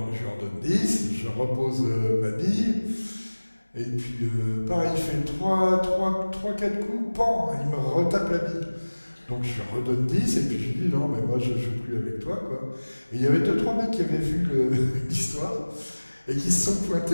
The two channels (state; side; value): inverted; both; correlation -1.00